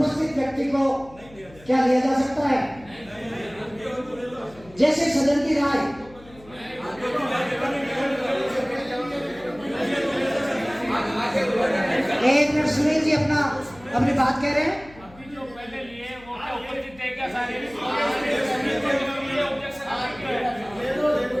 व्यक्ति को क्या लिया जा सकता है? जैसे सदन की राय। एक मिनट सुनील जी अपनी बात कह रहे हैं।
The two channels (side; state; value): left; noise; hum, 23 dB below the sound